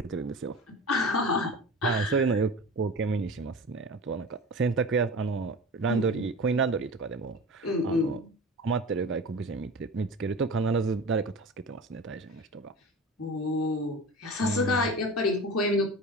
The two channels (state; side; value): normal; both; correlation 0.34